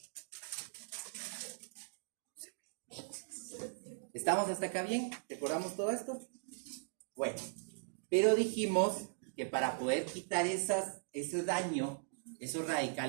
¿Estamos hasta acá bien? ¿Recordamos todo esto? Bueno, pero dijimos que para poder quitar ese daño, esos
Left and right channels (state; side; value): silent; left; digital silence